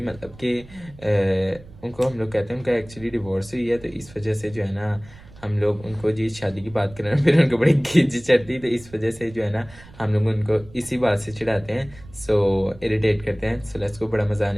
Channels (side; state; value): right; noise; rumble, 21 dB below the sound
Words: मतलब कि उनको हम लोग कहते हैं उनका एक्चुअली डिवोर्स हुई है, तो इस वजह से जो है ना हम लोग उनको जी शादी की बात करें फिर उनको बड़ी खिंच चढ़ती, तो इस वजह से जो है ना हम लोग उनको इसी बात से चिढ़ाते हैं, सो इरिटेट करते हैं। सो लेट्स गो, बड़ा मजा